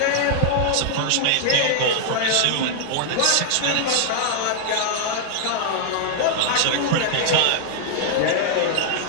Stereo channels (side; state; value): both; different; correlation -0.01